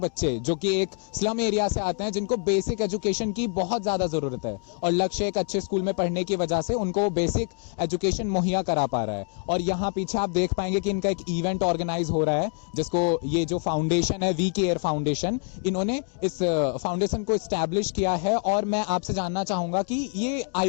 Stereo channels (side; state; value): right; quieter; 39.8 dB